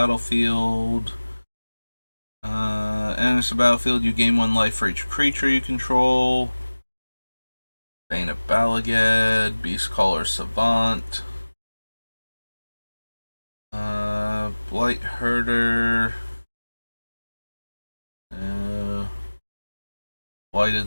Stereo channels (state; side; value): inverted; both; correlation -1.00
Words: Enters the battlefield, you gain 1 life for each creature you control. Bane of Balagad, Beastcaller Savant. Blight Herder.